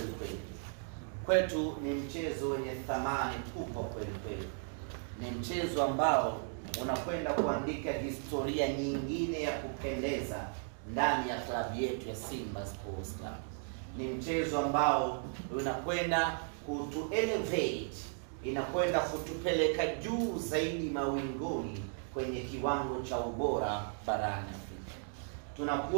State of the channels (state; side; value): silent; left; 54 dB below the other